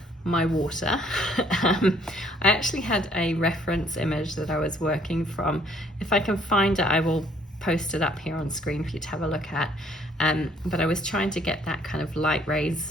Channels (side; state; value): both; normal; correlation 0.62